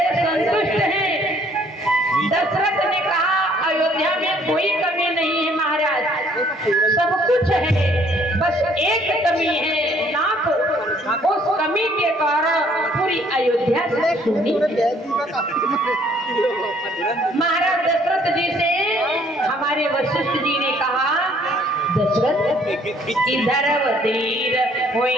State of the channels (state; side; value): normal; both; correlation 0.62